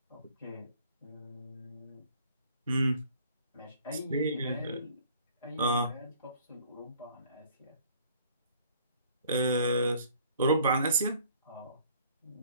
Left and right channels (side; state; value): both; inverted; correlation -0.56